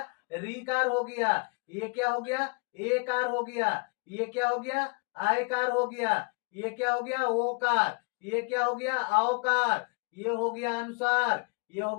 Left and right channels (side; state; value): right; quieter; 33.4 dB